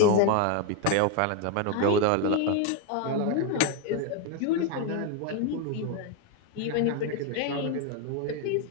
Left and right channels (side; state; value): both; different; correlation 0.01